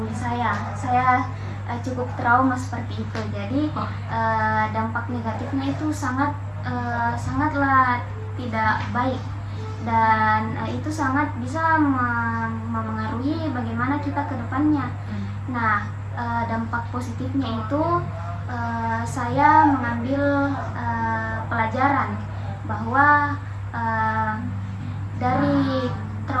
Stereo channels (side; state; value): both; identical; correlation 1.00